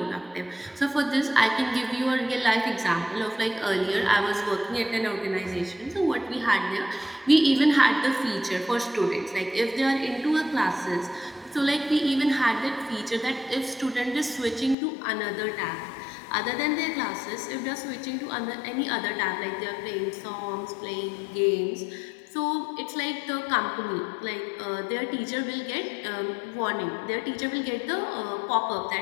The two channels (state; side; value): drops out; right; at 14.8 s